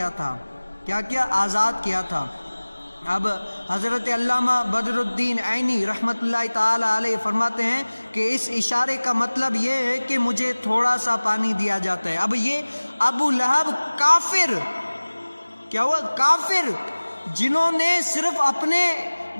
تھا۔ کیا کیا؟ آزاد کیا تھا۔ اب حضرت علامہ بدر الدین عینی رحمۃ اللہ تعالی علیہ فرماتے ہیں کہ اس اشارے کا مطلب یہ ہے کہ مجھے تھوڑا سا پانی دیا جاتا ہے۔ اب یہ ابو لہب کافر، کیا ہوا؟ کافر، جنہوں نے صرف اپنے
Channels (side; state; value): both; inverted; correlation -1.00